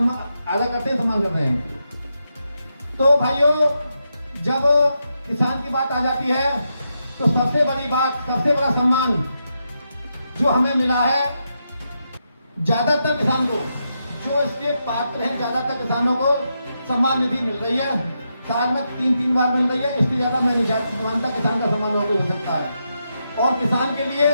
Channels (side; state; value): both; inverted; correlation -0.84